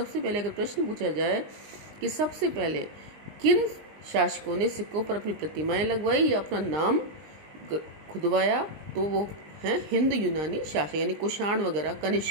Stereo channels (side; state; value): left; late; 19 ms